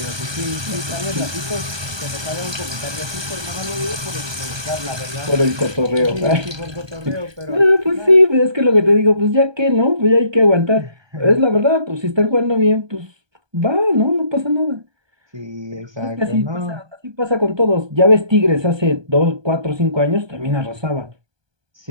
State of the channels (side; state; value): left; late; 1.2 ms